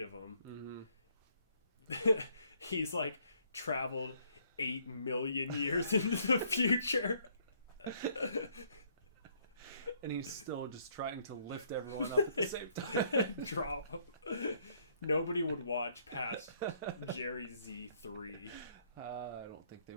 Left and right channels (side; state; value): both; inverted; correlation -0.66